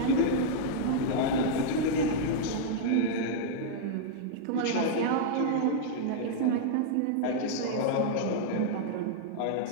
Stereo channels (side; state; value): both; different; correlation -0.01